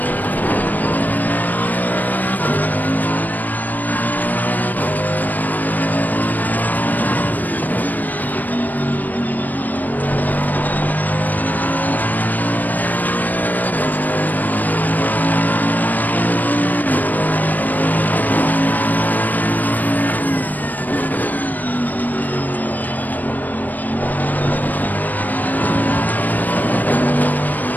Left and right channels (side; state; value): right; late; 0.085 ms